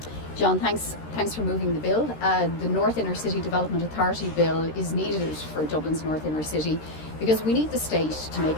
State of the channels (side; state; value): right; late; 13 ms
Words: John, thanks for moving the bill. The North Inner City Development Authority Bill is needed for Dublin's North Inner City because we need the state to make